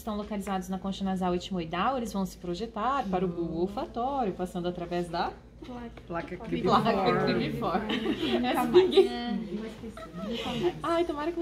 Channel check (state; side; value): identical; both; correlation 1.00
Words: localizados na concha nasal etimoidal, eles vão se projetar para o bulbo olfatório, passando através da Placa placa cribiforme. Essa ninguém... Ai, tomara que